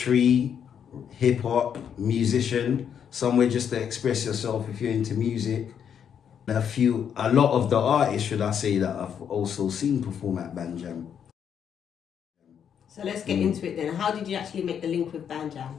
hip-hop, musician, somewhere just to express yourself if you're into music. A lot of the artists, should I say, that I've also seen perform at Band Jam. So let's get into it then. How did you actually make the link with Band Jam?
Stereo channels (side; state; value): right; quieter; 8.2 dB